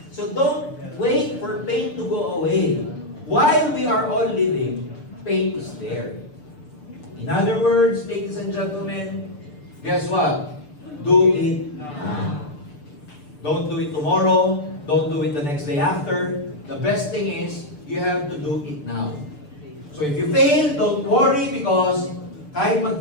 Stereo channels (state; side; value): late; right; 6.8 ms